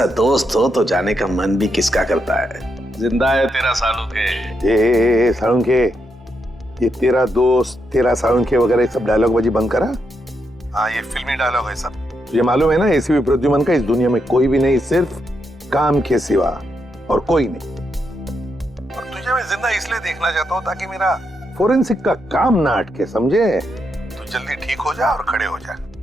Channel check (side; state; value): both; normal; correlation 0.82